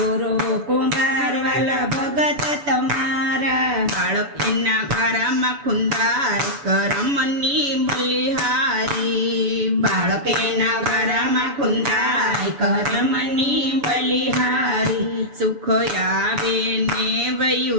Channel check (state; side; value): late; left; 7.0 ms